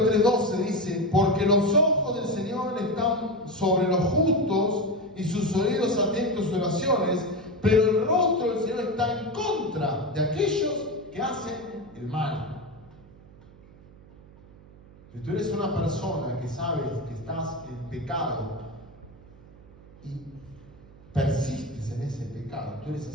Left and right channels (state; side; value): noise; right; hum, 23 dB below the sound